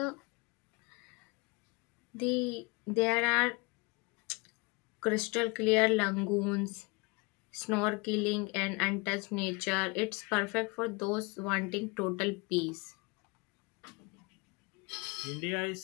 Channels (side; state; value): right; quieter; 28.0 dB